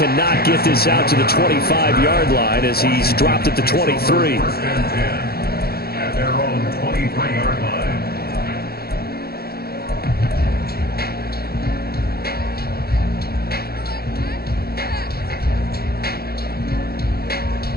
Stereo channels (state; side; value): late; right; 0.45 ms